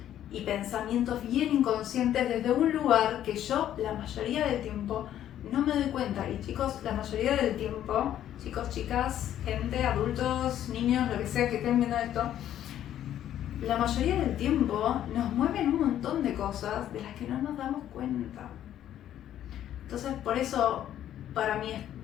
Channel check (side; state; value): right; quieter; 11.3 dB